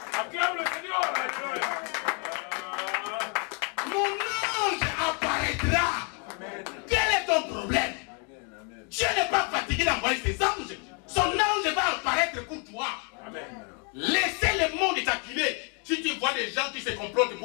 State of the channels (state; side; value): quieter; right; 35.4 dB